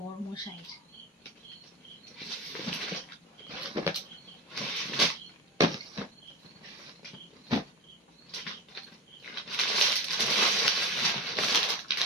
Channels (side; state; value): both; normal; correlation 0.25